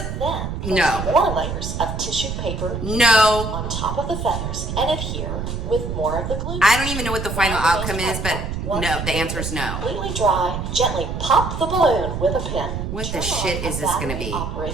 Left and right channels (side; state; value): right; noise; rumble, 4 dB below the sound